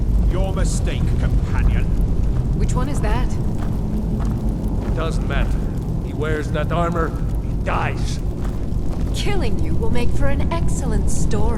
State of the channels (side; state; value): both; identical; correlation 1.00